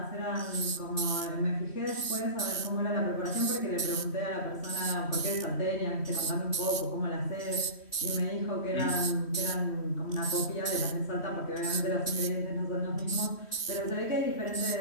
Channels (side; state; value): right; late; 3.1 ms